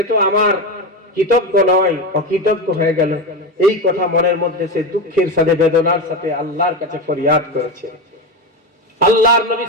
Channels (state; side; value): normal; both; correlation 0.17